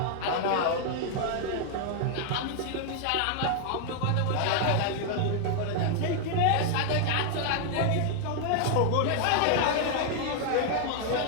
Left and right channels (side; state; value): both; different; correlation 0.00